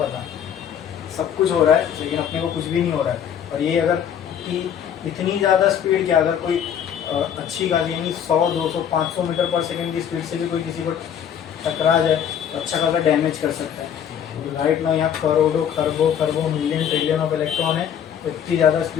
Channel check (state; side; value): quieter; right; 8.8 dB